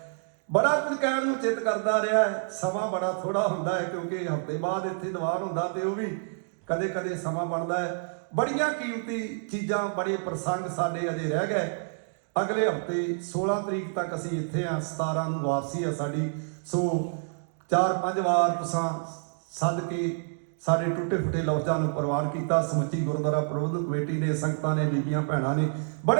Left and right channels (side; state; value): left; silent; digital silence